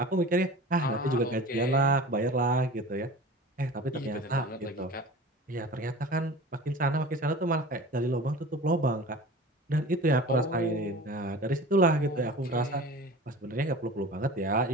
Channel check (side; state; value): both; normal; correlation 0.38